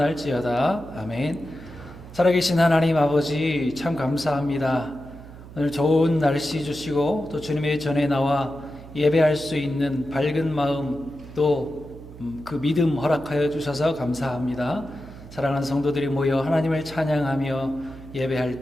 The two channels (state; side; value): noise; right; hum, 16 dB below the sound